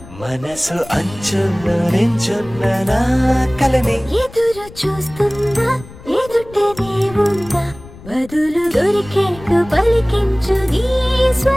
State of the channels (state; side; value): noise; left; rumble, 18 dB below the sound